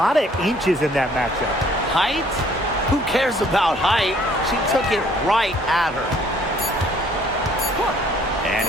of inches in that matchup. Height? Who cares about height? She took it right at her. And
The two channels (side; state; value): both; normal; correlation 0.60